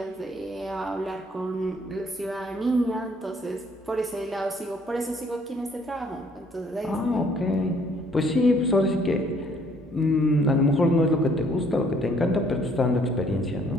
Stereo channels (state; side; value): normal; both; correlation 0.63